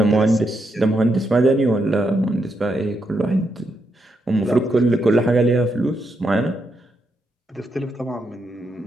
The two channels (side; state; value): both; normal; correlation 0.81